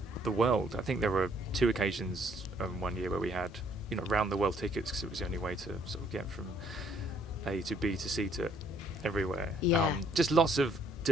the world. I think there were 2 occasions one year where we had round the world tickets because it was the only way to sort of get from A to B to C to everywhere. Yeah. Just lots of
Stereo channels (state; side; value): normal; both; correlation 0.65